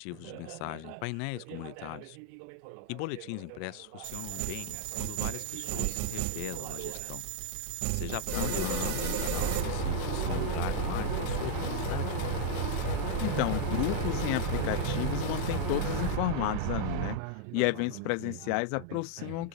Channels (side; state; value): both; different; correlation 0.00